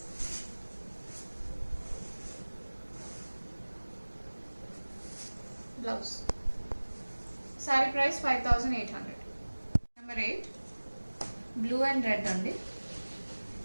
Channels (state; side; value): inverted; both; correlation -1.00